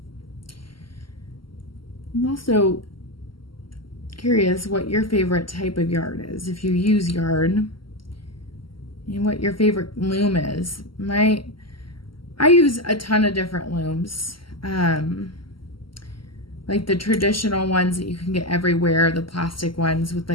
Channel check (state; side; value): late; right; 0.74 ms